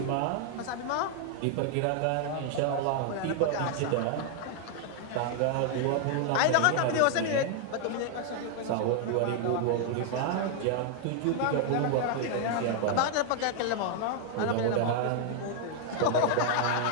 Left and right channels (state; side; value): different; both; correlation 0.00